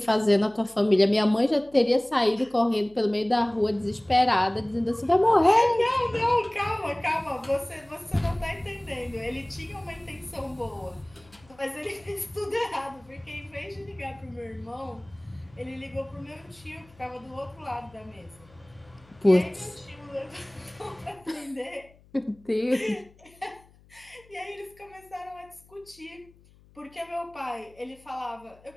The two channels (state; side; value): noise; left; hum, 27 dB below the sound